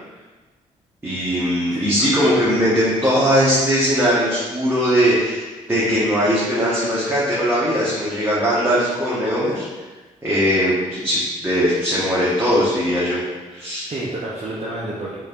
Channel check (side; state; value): both; normal; correlation 0.53